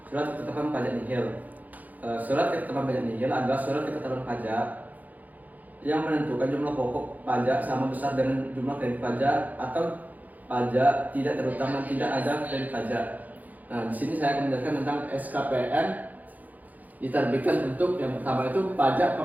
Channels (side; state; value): left; late; 0.080 ms